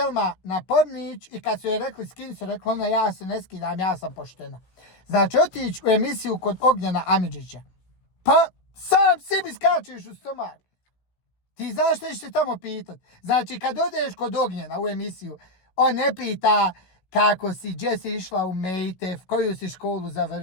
na Pornić i kad su joj rekli skini se, rekla ona ja se ne skidam, ja sam poštena. Znači otići u emisiju kod Ognjena Amidžića. Pa sam sebi skačeš u stomak. Ti znaš što ćeš se tamo pitat. Znači kad odeš kod Ognjena u emisiju, on ne pita kako si, gdje si išla u Mejtef, koju si školu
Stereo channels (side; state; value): right; late; 16 ms